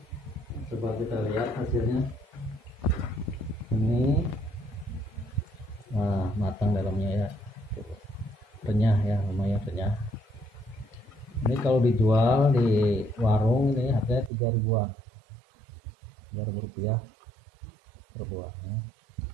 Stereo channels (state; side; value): drops out; left; at 14.3 s